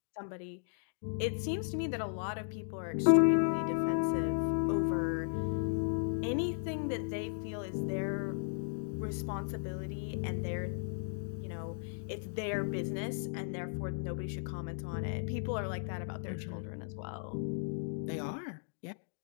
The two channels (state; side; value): silent; right; digital silence